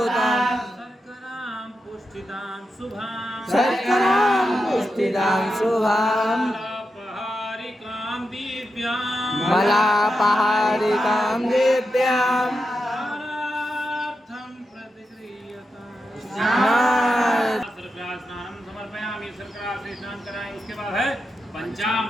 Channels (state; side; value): normal; both; correlation 0.88